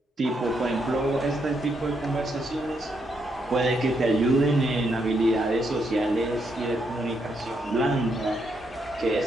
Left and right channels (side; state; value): both; normal; correlation 0.78